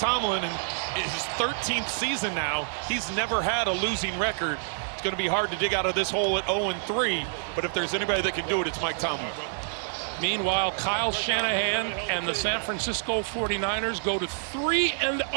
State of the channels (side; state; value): left; silent; 59 dB below the other